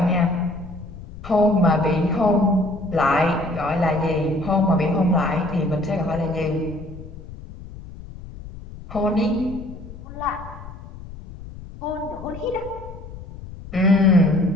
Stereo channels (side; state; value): left; noise; rumble, 14 dB below the sound